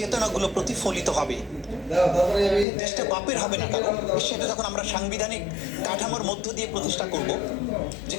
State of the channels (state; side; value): drops out; right; at 2.7 s